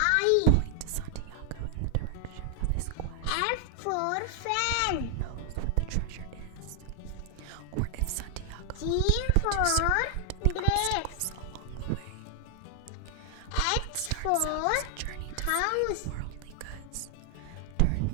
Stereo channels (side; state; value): both; different; correlation 0.00